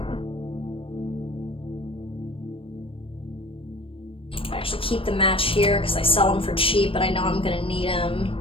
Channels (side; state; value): right; late; 0.26 ms